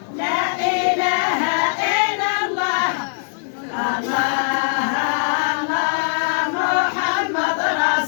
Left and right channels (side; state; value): right; silent; digital silence